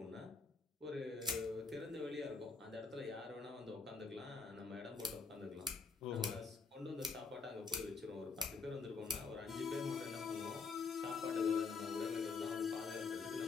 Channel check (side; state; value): right; quieter; 4.5 dB